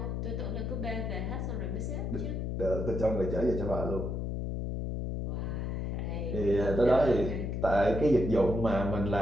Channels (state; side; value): noise; left; hum, 2 dB below the sound